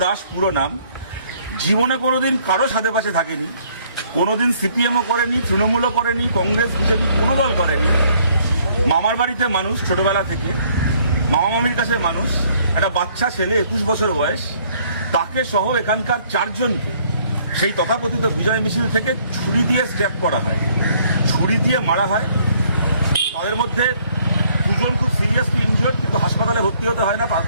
দাস পুরো নাম, জীবনে কোনোদিন কারো সাথে পাশে থাকেনি, কোনোদিন সিপিএমও করেনি, তৃণমূলও করেনি, কংগ্রেস বিজেপি কোনো দল করেনি, মামার বাড়িতে মানুষ ছোটবেলা থেকে, মামা মামির কাছে মানুষ, একটা বাচ্চা ছেলে 21 বছর বয়স, তাকে সহ এখানকার 4 জনকে সেই তথাকথিত বিজয় মিছিল থেকে ছুরি দিয়ে স্ট্যাপ করা হয়, ছুরি দিয়ে মারা হয়। তাদের মধ্যে 2 জন খুব সিরিয়াসলি ইনজিওর্ড, কিন্তু হাসপাতালে ভর্তি হতে হয় না,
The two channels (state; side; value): inverted; both; correlation -0.63